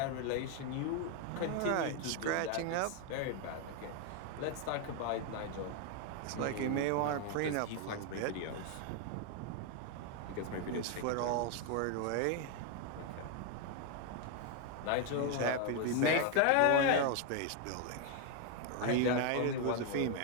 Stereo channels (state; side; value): different; both; correlation 0.01